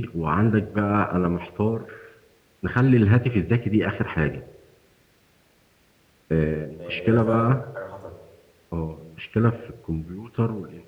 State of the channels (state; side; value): identical; both; correlation 1.00